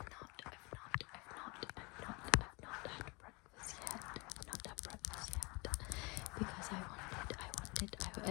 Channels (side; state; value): right; quieter; 27.9 dB